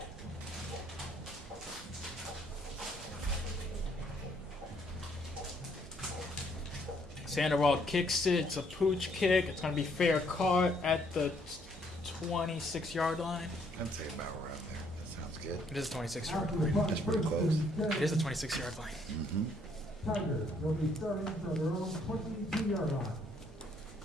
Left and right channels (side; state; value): right; noise; hum, 19 dB below the sound